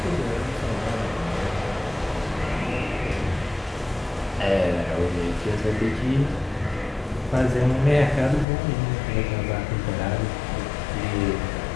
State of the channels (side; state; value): right; drops out; at 8.5 s